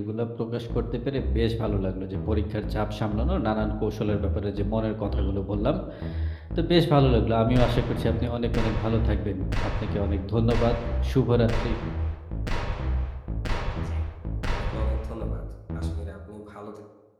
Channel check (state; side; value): identical; both; correlation 1.00